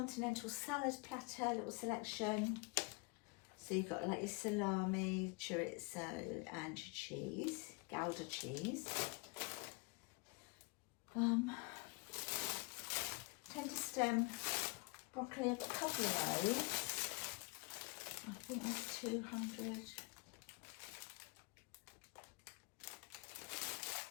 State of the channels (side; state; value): right; quieter; 29.3 dB